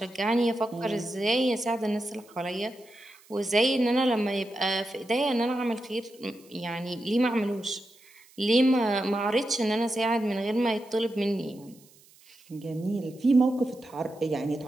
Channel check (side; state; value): right; noise; hiss, 27 dB below the sound